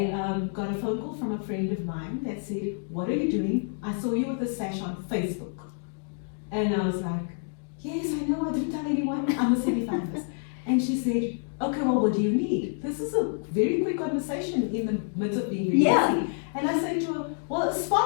got a phone call from a friend of mine that said, "What are you doing? I saw you with a sash on Facebook." And I was like, "Yes, I know, I didn't tell anyone, I'm a semi-finalist." And she said, "Okay, well, what do you need?" This is a very quick conversation in the midst of being really busy. And I said to her, "Well, a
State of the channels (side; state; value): right; silent; 59 dB below the other